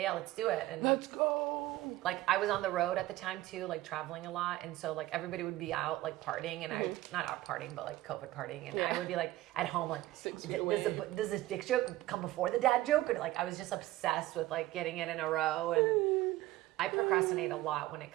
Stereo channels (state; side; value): quieter; left; 16.6 dB